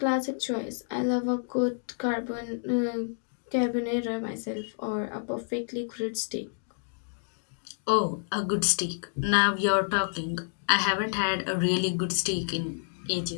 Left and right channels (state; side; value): silent; right; digital silence